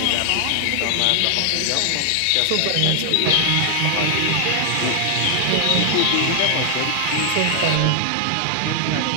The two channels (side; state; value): both; different; correlation 0.00